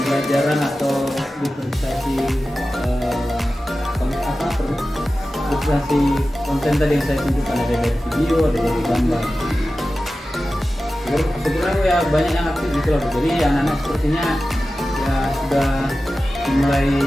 atau diferensiasi diferensiasi konten tadi yang saya tunjukkan, ada dari video, ada dari gambar. Sebenarnya ya banyak yang aktif gitu loh. Jadi anak-anak sepertinya ya sudah mulai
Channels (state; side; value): normal; both; correlation 0.94